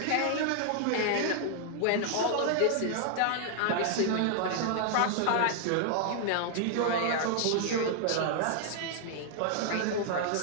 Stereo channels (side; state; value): both; different; correlation 0.00